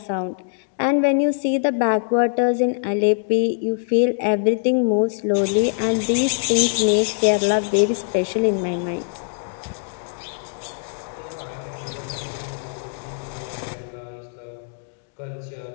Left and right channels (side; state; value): right; silent; digital silence